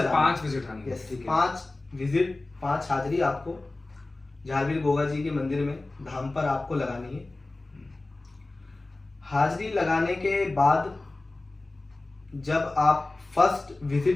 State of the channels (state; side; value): quieter; right; 3.0 dB